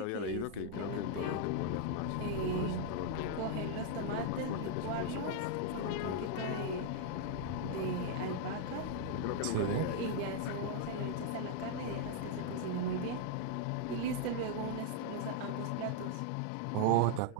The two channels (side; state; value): both; different; correlation 0.00